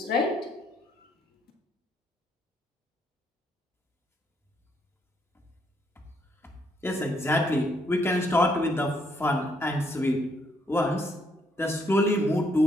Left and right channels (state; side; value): normal; both; correlation 0.72